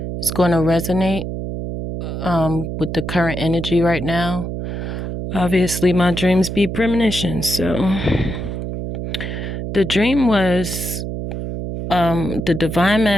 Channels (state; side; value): noise; right; hum, 5 dB below the sound